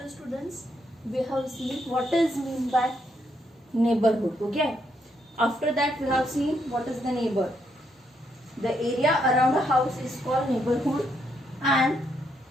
students, we have seen what is mean by neighborhood. Okay. After that, we have seen what is the neighbor. The area around a house is called neighborhood, and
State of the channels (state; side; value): normal; both; correlation 0.76